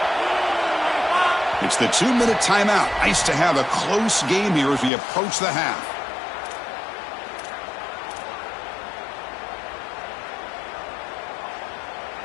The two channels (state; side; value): drops out; right; at 4.9 s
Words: It's the 2-minute timeout. Nice to have a close game here as we approach the half.